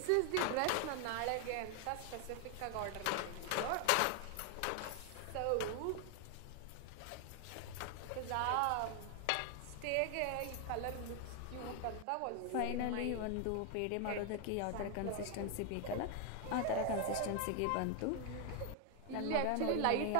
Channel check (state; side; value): different; both; correlation 0.00